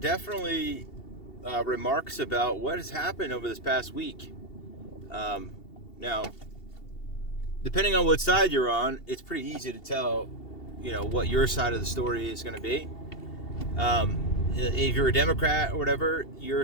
remarks about what has happened over this past week. Now, depending on what side you're on, it's pretty easy to tell, what your side of the story is going to be. If you're a Democrat or whatever, your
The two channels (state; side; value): late; right; 2.7 ms